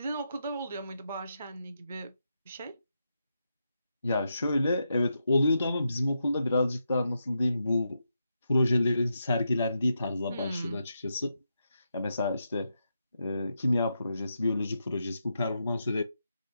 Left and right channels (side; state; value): both; inverted; correlation -0.85